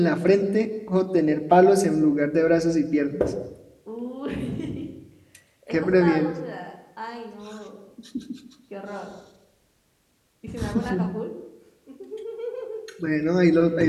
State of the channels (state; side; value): identical; both; correlation 1.00